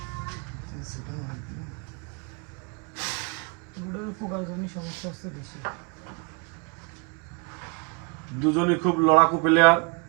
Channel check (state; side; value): quieter; left; 32.6 dB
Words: সমস্যা হচ্ছে বেশি। দুজনই খুব লড়াকু প্লেয়ার।